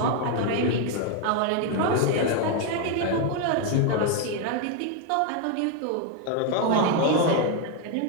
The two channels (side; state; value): both; different; correlation 0.01